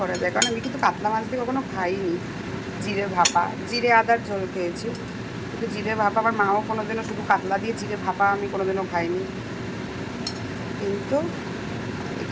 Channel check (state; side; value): identical; both; correlation 1.00